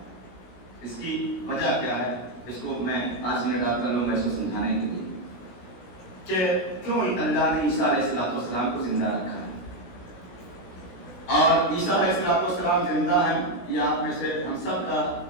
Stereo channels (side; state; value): right; late; 16 ms